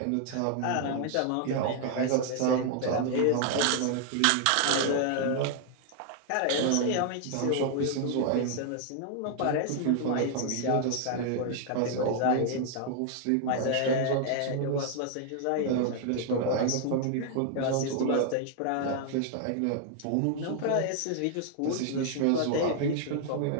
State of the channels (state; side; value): different; both; correlation 0.00